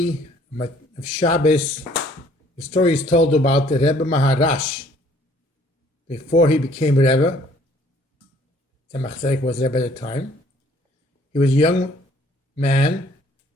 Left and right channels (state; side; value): normal; both; correlation 0.59